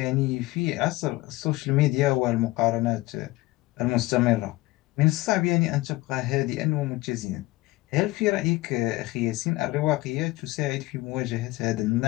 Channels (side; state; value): right; quieter; 19.7 dB